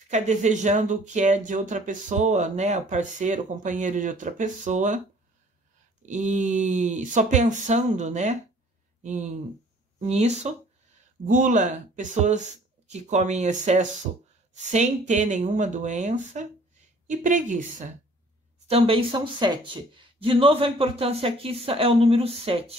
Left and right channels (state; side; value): normal; both; correlation 0.54